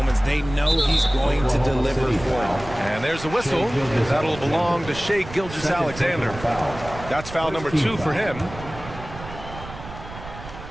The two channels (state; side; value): noise; right; rumble, 13 dB below the sound